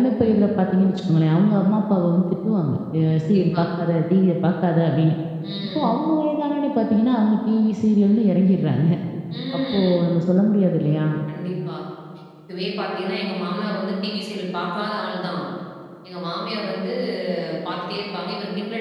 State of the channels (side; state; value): both; identical; correlation 1.00